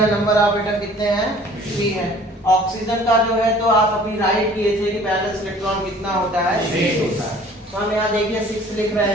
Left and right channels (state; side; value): normal; both; correlation 0.51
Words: नंबर ऑफ एटम कितने हैं? 3 है। ऑक्सीजन का जो है तो आप अभी राइट किए थे कि बैलेंस इलेक्ट्रॉन कितना होता है? 6 होता है। तो हम यहाँ देखिए 6 लिख रहे